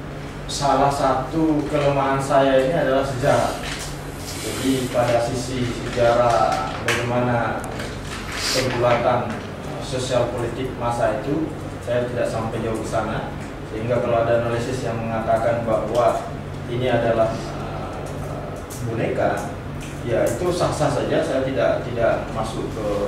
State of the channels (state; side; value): identical; both; correlation 1.00